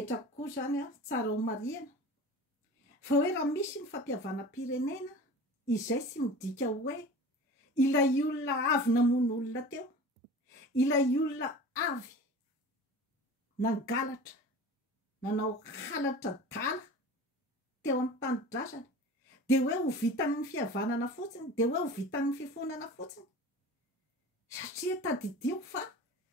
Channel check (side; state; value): both; normal; correlation 0.37